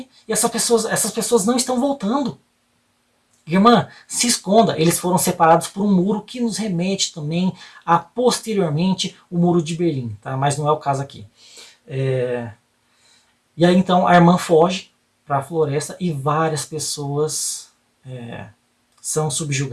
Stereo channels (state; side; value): identical; both; correlation 1.00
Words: E essas pessoas não estão voltando. Irmã, se esconda. Eles foram separados por um muro que nos remete também a, posteriormente, o muro de Berlim. Tá? Mas não é o caso aqui. E aí então a irmã foge para a floresta e várias pessoas são